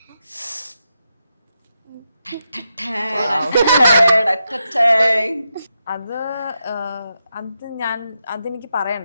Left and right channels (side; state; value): both; inverted; correlation -0.85